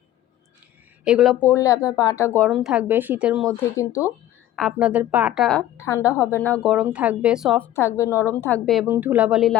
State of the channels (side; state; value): right; quieter; 13.3 dB